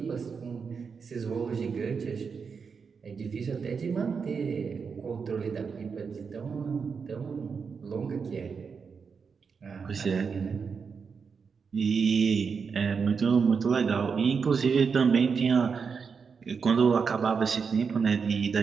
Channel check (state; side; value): quieter; left; 5.7 dB